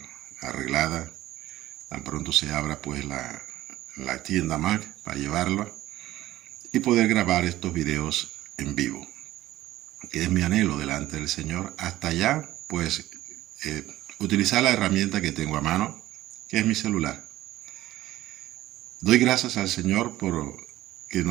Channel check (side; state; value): left; quieter; 15.3 dB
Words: arreglada, tan pronto se abra pues la tienda Mac para llevarla y poder grabar estos videos en vivo, que es mi anhelo delante del Señor. Hasta allá pues utilizar la herramienta que tengo a mano, que es mi celular. Doy gracias al Señor por que